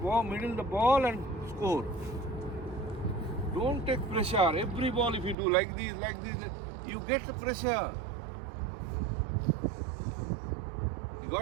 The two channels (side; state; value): left; drops out; at 5.4 s